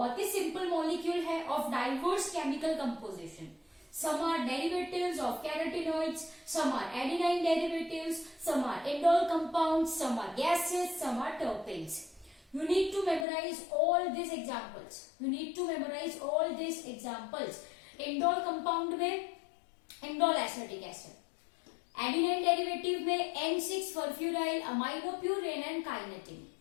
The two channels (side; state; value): right; drops out; at 13.2 s